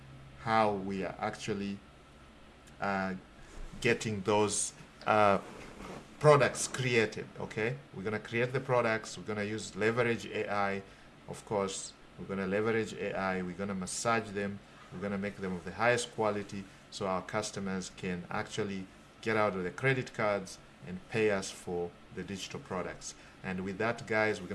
how we are actually getting those products created. Okay, we're going to create the products, we're going to use leverage AI. Of course, we're going to leverage AI, we're going to massage them, we're going to make them of the highest quality so our customers can actually get out of the credit cards and pay us for the digital products. And with that, guys, we're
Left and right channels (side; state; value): both; identical; correlation 1.00